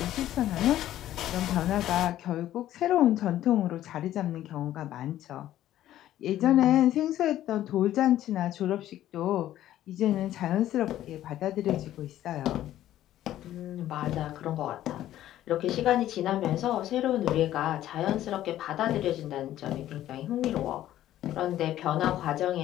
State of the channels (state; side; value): quieter; right; 13.0 dB